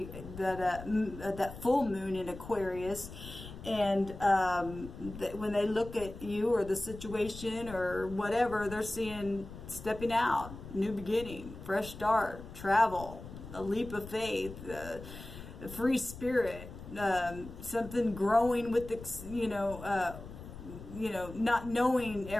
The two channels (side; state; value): left; noise; rumble, 13 dB below the sound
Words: that full moon in Aquarius. And when they look at you or the situation or whatever, they're seeing stepping out, new beginning, fresh start, travel, a leap of faith, a free spirit, something growing with not knowing